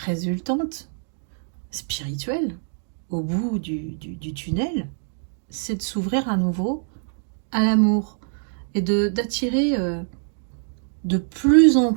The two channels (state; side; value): silent; left; digital silence